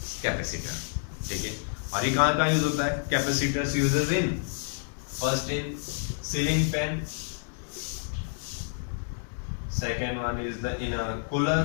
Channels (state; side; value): silent; right; digital silence